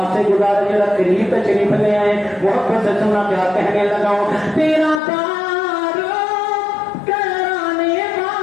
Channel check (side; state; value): right; drops out; at 5.0 s